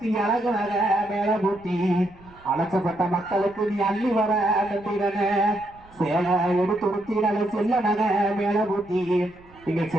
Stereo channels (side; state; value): right; noise; rumble, 25 dB below the sound